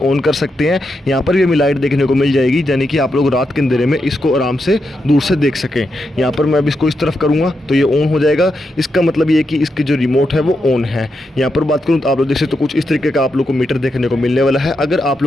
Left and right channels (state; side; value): normal; both; correlation 0.85